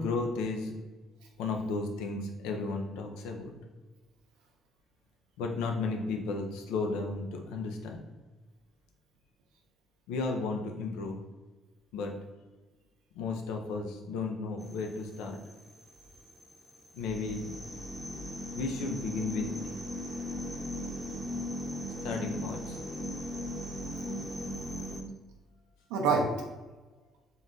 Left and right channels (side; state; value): both; normal; correlation 0.54